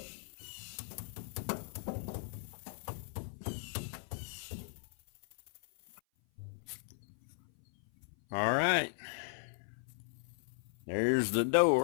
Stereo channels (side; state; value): right; silent; 53 dB below the other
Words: All right, there's the